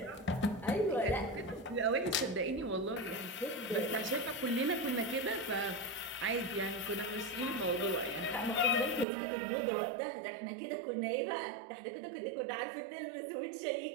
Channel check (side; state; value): left; drops out; at 9.1 s